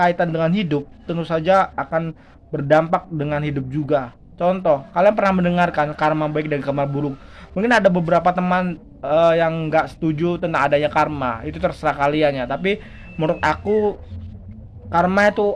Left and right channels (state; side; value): identical; both; correlation 1.00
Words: dengan hidup tentu saja akan berdampak dengan hidup juga. Contoh, kalian pernah mendengarkan karma baik dan karma buruk. Mungkin ada beberapa teman yang nggak setuju tentang adanya karma. Itu terserah kalian ya. Tapi menurut aku, karma itu